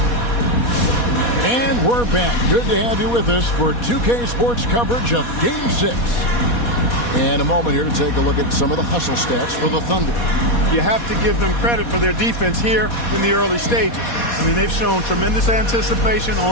We're back. Good to have you with us for 2K Sports coverage of Game 6. And a moment here to take a look at some of the hustle stats for the Thunder. You have to give them credit for their defense here in the early stages. I mean, they've shown tremendous anticipation,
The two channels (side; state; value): right; late; 4.2 ms